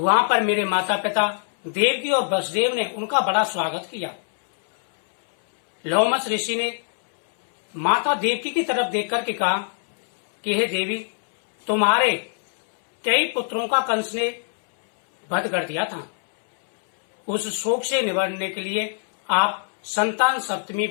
पर मेरे माता पिता देवकी और वसुदेव ने उनका बड़ा स्वागत किया। लोमस ऋषि ने माता देवकी की तरफ देख करके कहा कि हे देवी, तुम्हारे कई पुत्रों का कंस ने वध कर दिया था। उस शोक से निवारने के लिए आप संतान सप्तमी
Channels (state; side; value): silent; right; 64 dB below the other